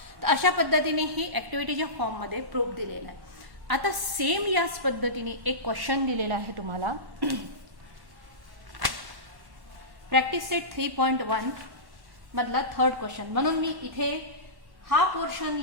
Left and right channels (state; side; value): late; left; 1.1 ms